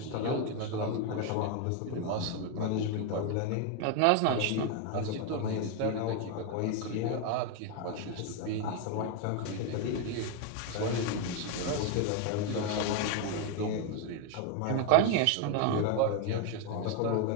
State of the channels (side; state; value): both; different; correlation 0.01